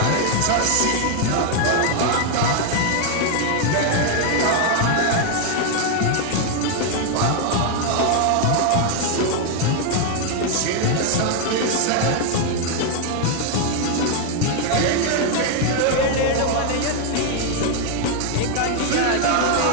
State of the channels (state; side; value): different; both; correlation 0.00